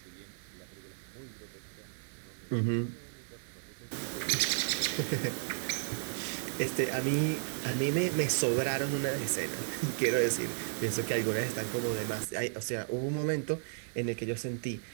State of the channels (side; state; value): left; silent; digital silence